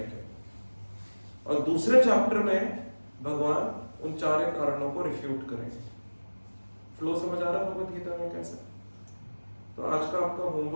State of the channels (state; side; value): inverted; both; correlation -1.00